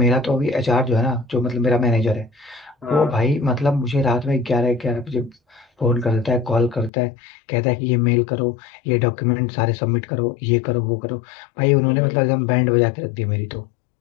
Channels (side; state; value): right; drops out; at 6.9 s